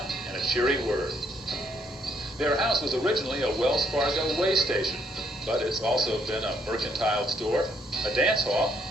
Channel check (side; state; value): both; normal; correlation 0.71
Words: and a cheery word. Their house was originally a Wells Fargo way station, but it's also been a mercantile store, a dance hall,